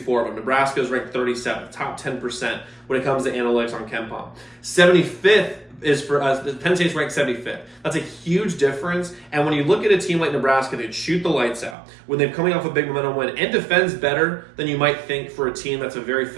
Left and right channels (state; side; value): drops out; left; at 11.8 s